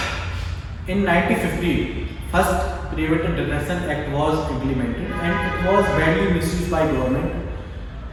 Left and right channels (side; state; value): both; identical; correlation 1.00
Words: in 1950, first Preventive Detention Act was implemented and it was badly misused by government,